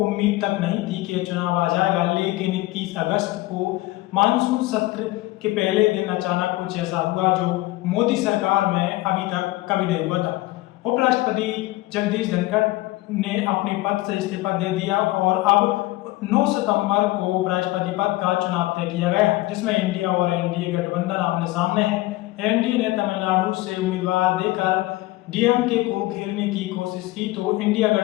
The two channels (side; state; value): right; quieter; 18.8 dB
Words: तक नहीं थी कि चुनाव आ जाएगा। लेकिन 21 अगस्त को मानसून सत्र के पहले दिन अचानक कुछ ऐसा हुआ जो मोदी सरकार में अभी तक कभी नहीं हुआ था। उपराष्ट्रपति जगदीप धनखड़ ने अपने पद से इस्तीफा दे दिया और अब 9 सितंबर को उपराष्ट्रपति पद का चुनाव तय किया गया, जिसमें इंडिया और एनडीए गठबंधन आमने सामने है। एनडीए ने तमिलनाडु से उम्मीदवार देकर डीएमके को घेरने की कोशिश की, तो इंडिया